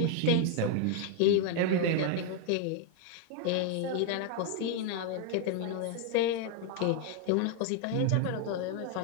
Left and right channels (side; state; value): both; different; correlation 0.00